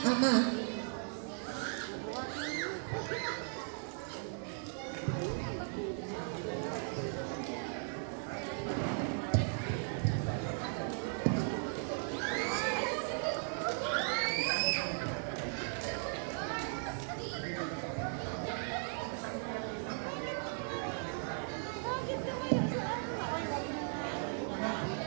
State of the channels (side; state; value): left; silent; 53 dB below the other